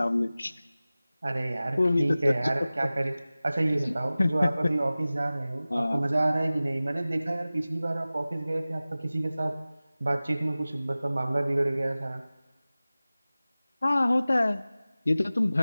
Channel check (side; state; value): both; inverted; correlation -0.97